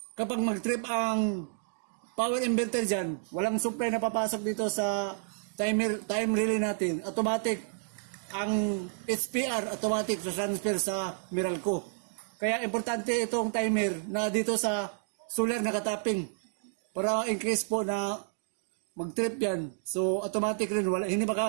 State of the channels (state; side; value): silent; left; digital silence